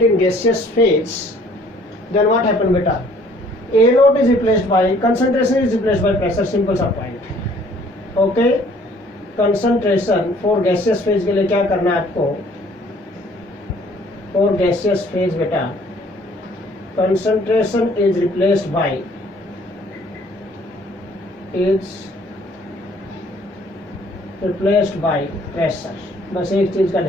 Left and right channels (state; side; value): normal; both; correlation 0.58